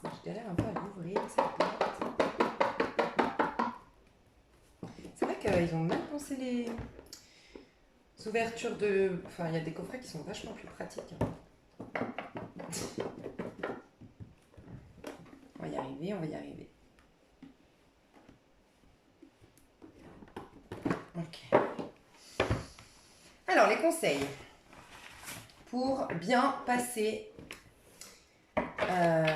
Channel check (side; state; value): both; identical; correlation 1.00